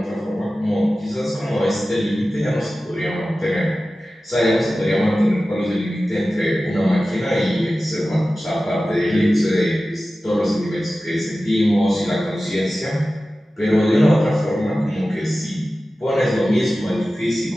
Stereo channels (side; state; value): both; normal; correlation 0.95